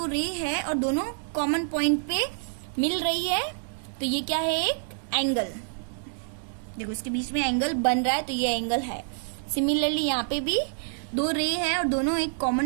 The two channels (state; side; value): silent; left; digital silence